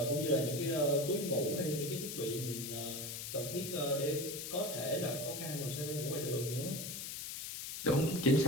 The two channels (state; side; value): noise; left; hiss, 6 dB below the sound